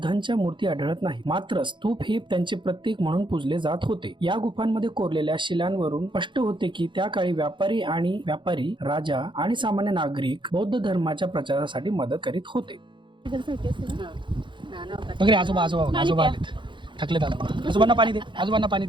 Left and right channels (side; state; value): left; late; 0.23 ms